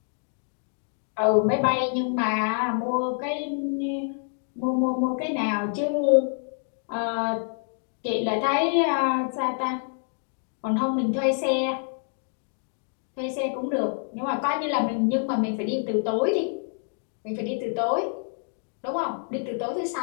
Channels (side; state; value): right; silent; 60 dB below the other